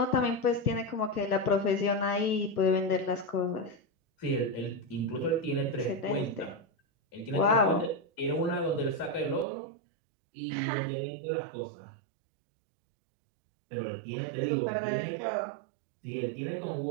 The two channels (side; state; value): left; drops out; at 9.5 s